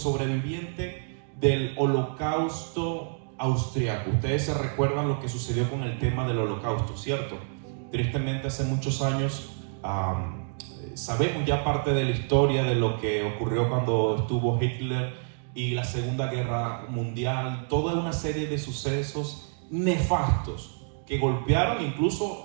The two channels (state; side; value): silent; left; 59 dB below the other